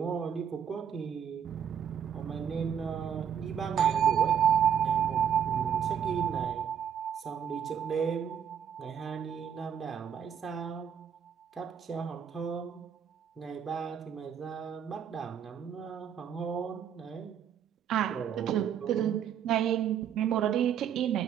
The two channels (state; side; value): quieter; left; 8.4 dB